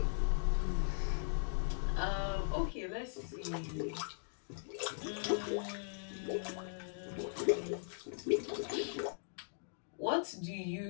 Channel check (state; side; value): silent; right; digital silence